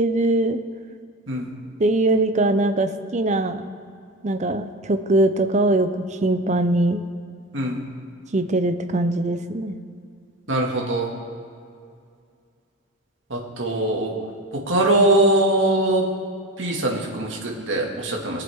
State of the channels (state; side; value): normal; both; correlation 0.27